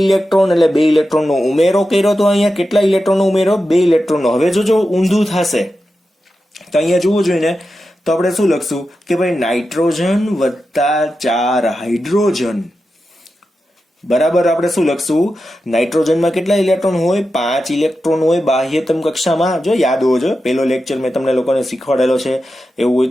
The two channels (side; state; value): both; normal; correlation 0.90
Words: ઇલેક્ટ્રોન, એટલે 2 ઇલેક્ટ્રોનનો ઉમેરો કર્યો. તો અહીંયા કેટલા ઇલેક્ટ્રોનનો ઉમેરો? 2 ઇલેક્ટ્રોનનો. હવે જો ઊંધું થશે તો અહીંયા જોવું જોઈએ ને, તો આપણે શું લખશું કે ભાઈ નાઇટ્રોજન વત્તા 4 હાઇડ્રોજન. બરાબર, આપણે શું લખશું? નાઇટ્રોજનમાં કેટલા ઇલેક્ટ્રોન હોય? 5 ઇલેક્ટ્રોન હોય બાહ્યતમ કક્ષામાં. જો યાદ હોવો જોઈએ, પેલો લેક્ચર મેં તમને લોકોને શીખવાડેલો છે, એવું હોય